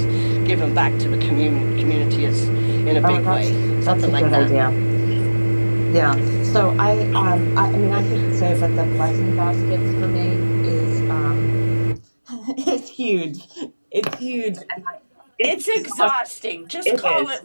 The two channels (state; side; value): inverted; both; correlation -1.00